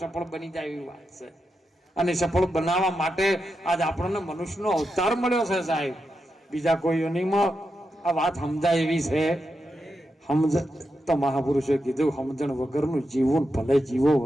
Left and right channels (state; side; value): normal; both; correlation 0.87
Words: બની જાય એવી વાત છે અને સફળ બનાવવા માટે આજ આપણને મનુષ્યનો અવતાર મળ્યો છે સાહેબ બીજા કોઈ યોનિમાં આ વાત સમજાય એવી છે સમજ તો મહાપુરુષે કીધું સમજણ વગરનું જીવન ભલે જીવો